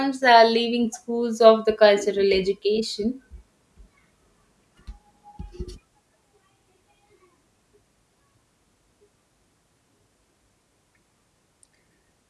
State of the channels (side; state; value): both; identical; correlation 1.00